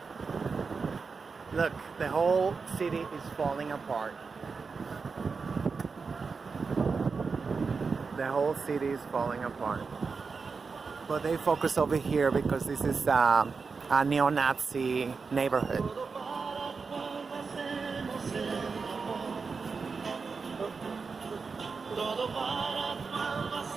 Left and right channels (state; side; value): quieter; left; 4.9 dB